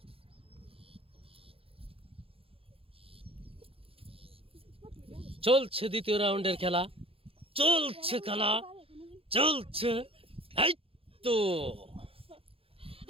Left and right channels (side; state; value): left; late; 0.27 ms